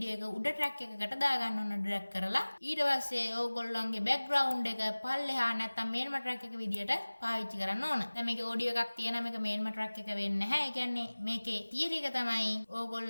එක උඩ track එකකට දාගන්න ඕන drag කරලා. ඊට පස්සේ ඕගොල්ලන්ගේ background එක පල්ලෙහා නැත්නම් main track එක විදිහට පාවිච්චි කරන්න ඕන. දැන් මේකේ ඔඩියෝ එකක් තියෙනවා මේක මේන්ම ට්‍රැක් එක වෙන්නේ නැහැ. ඒ කියන්නේ මේකේ තියරි එක තමයි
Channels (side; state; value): both; inverted; correlation -1.00